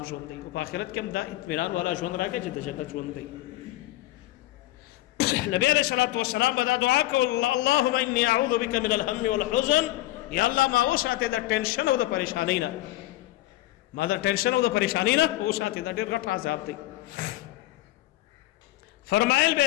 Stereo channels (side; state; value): right; quieter; 16.8 dB